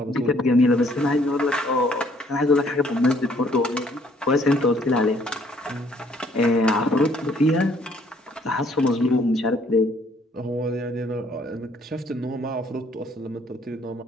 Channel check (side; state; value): both; normal; correlation 0.63